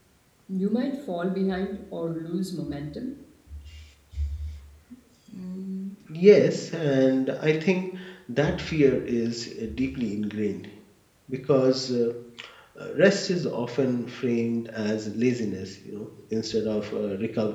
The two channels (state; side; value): identical; both; correlation 1.00